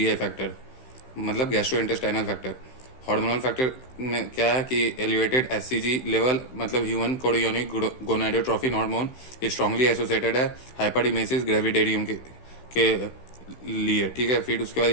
factor, मतलब गैस्ट्रोइंटेस्टाइनल फैक्टर। हार्मोनल फैक्टर में क्या है कि एलिवेटेड एचसीजी लेवल, मतलब human chorionic gonadotrophin hormone strongly associated है हाइपरइमेसिस ग्रेविडेरियम के लिए। ठीक है, फिर उसके बाद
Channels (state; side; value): late; right; 16 ms